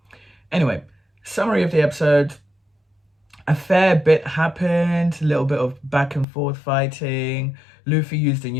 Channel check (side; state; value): right; drops out; at 6.2 s